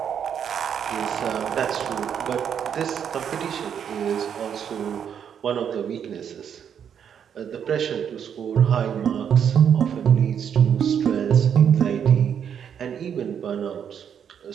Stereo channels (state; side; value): quieter; left; 8.2 dB